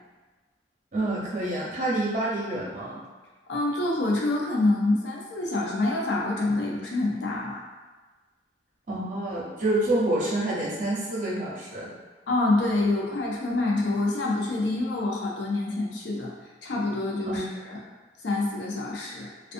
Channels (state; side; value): normal; both; correlation 0.65